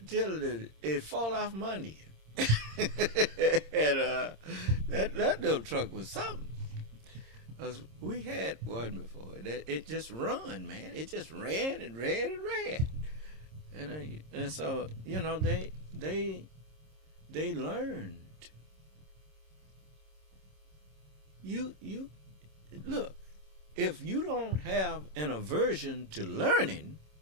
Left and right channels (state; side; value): late; left; 26 ms